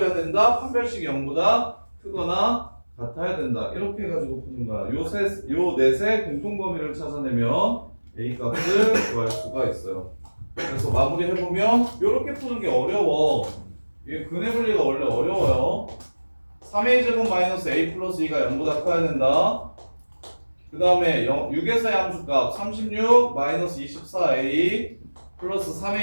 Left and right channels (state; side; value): inverted; both; correlation -1.00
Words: 된다. 판별식이 0보다 크거나 같아야 된다. 이렇게 해가지고 푸는 거야. 요 넷의 공통 범위를 찾아내면 A 값을 구할 수가 있어요. 그래서 마무리 해보면 이렇게 푸는 게 어려워. 이게 근의 분리가 원래 어려워요. 3a 제곱 마이너스 a 플러스 2가 0보다 커야 된다. 그 다음에 6에서의 함수값 36 마이너스 24a 플러스